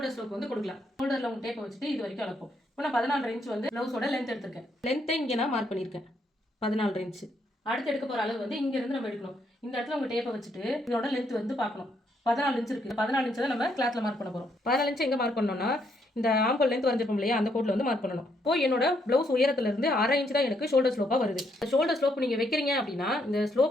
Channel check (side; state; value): both; normal; correlation 0.74